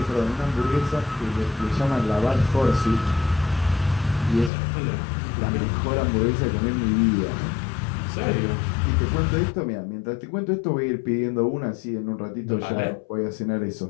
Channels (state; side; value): drops out; right; at 4.5 s